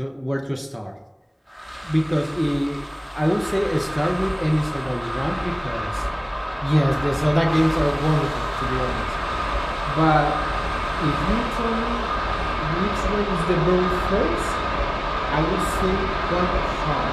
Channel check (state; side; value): identical; both; correlation 1.00